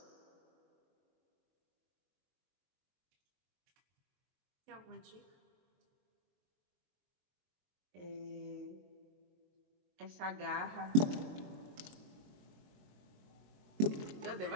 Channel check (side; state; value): left; late; 22 ms